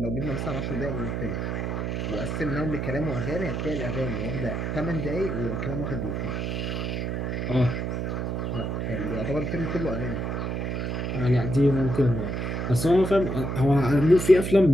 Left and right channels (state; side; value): noise; right; hum, 2 dB below the sound